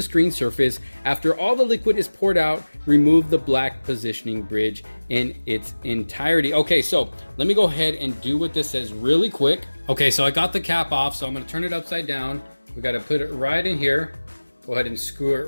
screen surface. After all the liquid is poured out, remove the black positioning bridge in its entirety. Okay, so let me go ahead and do what this says really quick. Okay, so I got the cap off, so I'm gonna turn it upside down. We gotta put it right in here. Go ahead and screw it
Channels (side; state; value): both; inverted; correlation -1.00